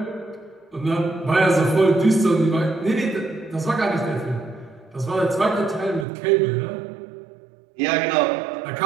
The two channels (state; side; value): drops out; left; at 6.1 s